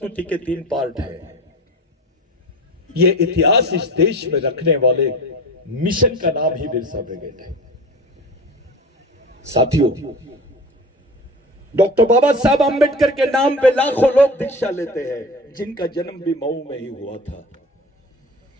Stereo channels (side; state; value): both; normal; correlation 0.33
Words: के 3 पार्ट है। ये इतिहास इस देश में रखने वाले मिशन का नाम ही बिरसा ब्रिगेड है। साथियों, डॉक्टर बाबा साहब आंबेडकर के नाम पे लाखों लोग दीक्षा लेते हैं, जिनका जन्म भी मऊ में ही हुआ था।